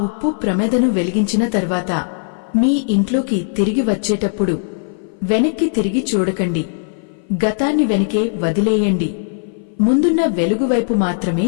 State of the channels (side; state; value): right; silent; 57 dB below the other